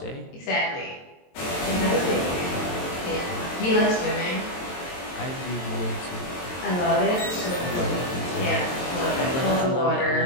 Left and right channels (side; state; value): right; late; 22 ms